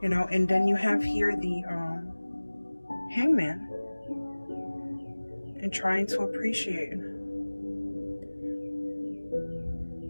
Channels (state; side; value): inverted; both; correlation -1.00